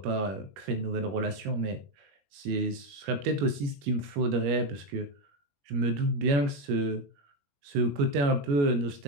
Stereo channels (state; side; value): late; left; 21 ms